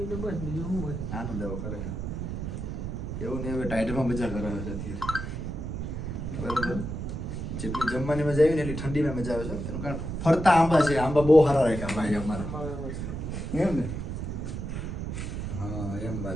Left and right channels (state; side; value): noise; right; rumble, 5 dB below the sound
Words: તો બસ, બીજું શું હોય. આનંદ આવ્યો ખરેખર. એવું નહીં, હવે ટાઈટમાં મજા કરાવે છે અત્યારે. બરાબર, જેટલી જમવાની મજા આવી ને એટલી ઠંડીમાં મજા આવે છે. એનું કારણ ફરતા આંબા છે. આંબા બહુ સારા રાખ્યા ભાઈ અમારા, એમ ને? હા, એમ